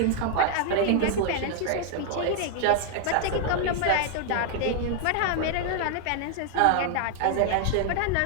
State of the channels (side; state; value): both; different; correlation 0.00